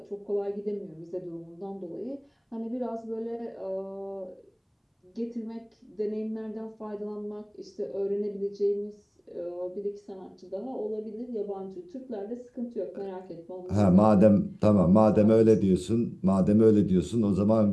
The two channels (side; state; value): both; identical; correlation 1.00